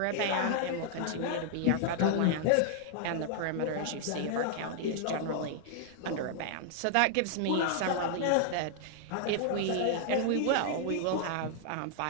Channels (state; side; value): different; both; correlation 0.00